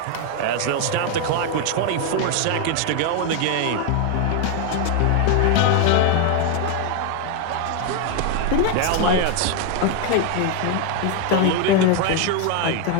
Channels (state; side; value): different; both; correlation 0.01